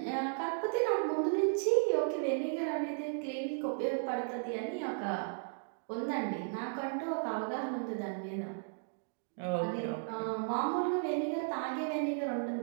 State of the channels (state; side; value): silent; left; digital silence